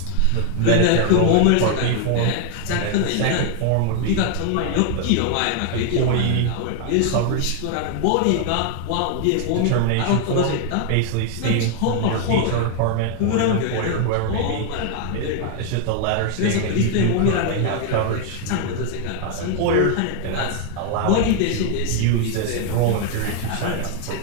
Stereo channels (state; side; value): different; both; correlation 0.00